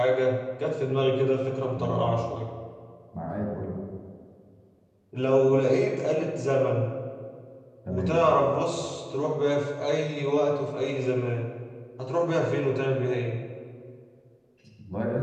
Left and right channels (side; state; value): both; identical; correlation 1.00